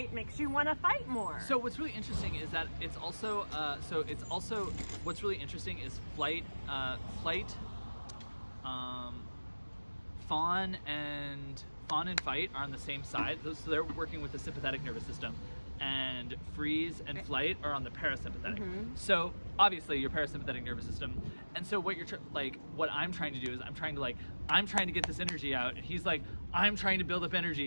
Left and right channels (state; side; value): inverted; both; correlation -1.00